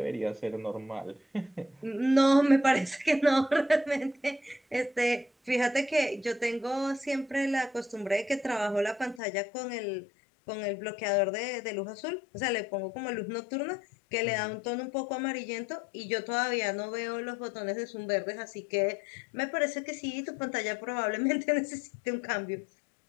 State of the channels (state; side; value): drops out; right; at 9.2 s